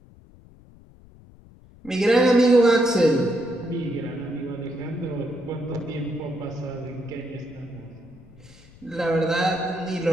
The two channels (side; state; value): left; noise; rumble, 24 dB below the sound